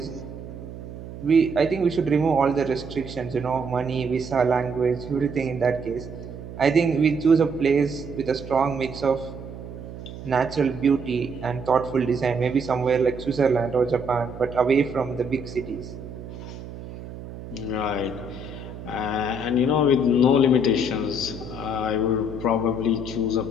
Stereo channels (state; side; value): noise; right; hum, 12 dB below the sound